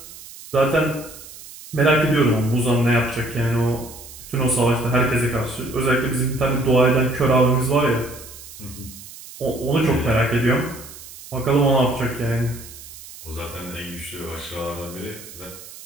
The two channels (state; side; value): noise; right; hiss, 16 dB below the sound